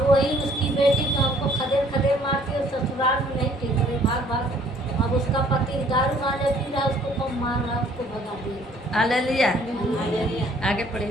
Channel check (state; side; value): normal; both; correlation 0.59